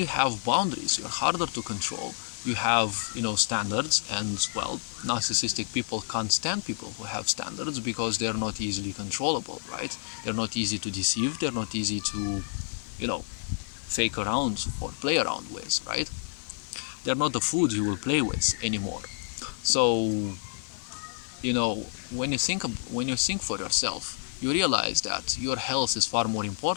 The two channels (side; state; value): right; silent; digital silence